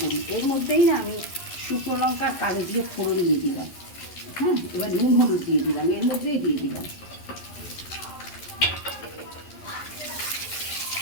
করি। এর মধ্যেই না আমি শুকনো লঙ্কা কালো দিয়ে ফোড়ন দিয়ে দিলাম। হ্যাঁ, এবার নুন হলুদ দিয়ে দিলাম, এর মধ্যেই দিয়ে দিলাম।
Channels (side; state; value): right; late; 11 ms